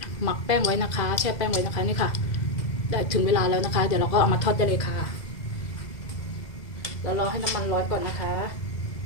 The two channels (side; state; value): right; late; 2.0 ms